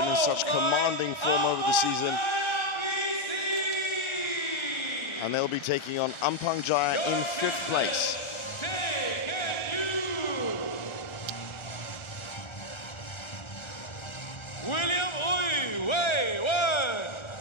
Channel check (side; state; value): right; late; 1.3 ms